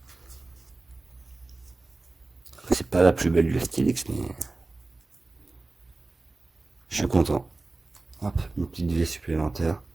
C'est pas la plus belle du Stylix, mais je suis content. Hop, une petite vie supplémentaire.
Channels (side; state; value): left; quieter; 3.3 dB